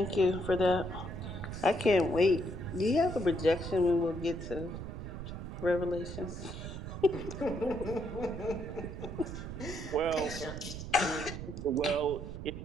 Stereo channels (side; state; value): right; noise; rumble, 8 dB below the sound